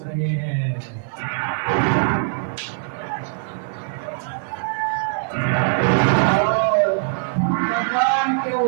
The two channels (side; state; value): left; silent; 55 dB below the other